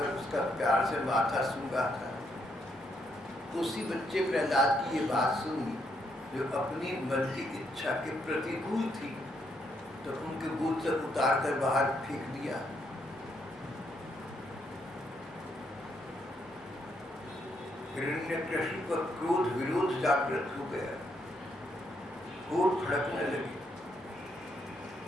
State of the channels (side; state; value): both; normal; correlation 0.76